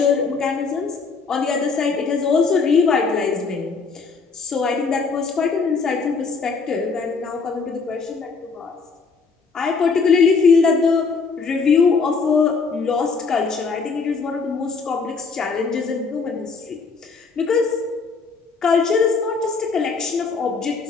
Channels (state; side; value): quieter; right; 4.8 dB